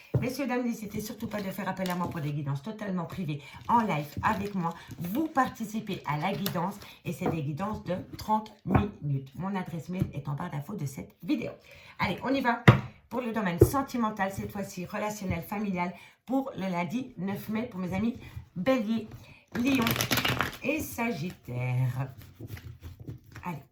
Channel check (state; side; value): identical; both; correlation 1.00